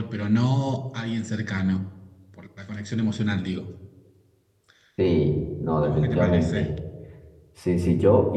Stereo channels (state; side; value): identical; both; correlation 1.00